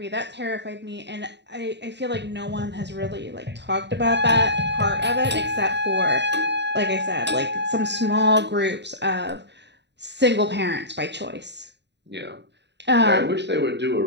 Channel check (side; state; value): left; late; 0.51 ms